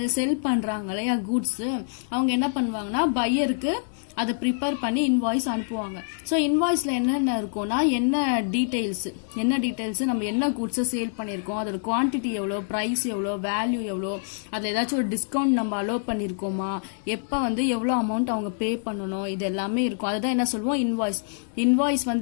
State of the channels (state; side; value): silent; right; digital silence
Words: செல் பண்றாங்க இல்லையா கூட்ஸ், அவங்க என்ன பண்ணுவாங்கன்னா பையருக்கு அதை ப்ரிப்பேர் பண்ணி இன்வாய்ஸ் அனுப்புவாங்க. ஸோ இன்வாய்ஸ்ல என்னென்ன இருக்கும்னா என்ன டீடைல்ஸ் நம்ம என்ன கூட்ஸை சேல் பண்ணியிருக்கோம், அதோட குவான்டிட்டி எவ்வளோ, ப்ரைஸ் எவ்வளோ, வேல்யூ எவ்வளோ, அதில் ஏதாச்சும் ஒரு டிஸ்கவுண்ட் நம்ம அலோவ் பண்ணியிருக்கோமா, எப்போ வந்து எவ்வளோ அமௌண்ட் அவங்க பே பண்ணணும், இது எல்லாமே இருக்கும். அதுதான் என்ன சொல்லுவோம், இன்வாய்ஸ்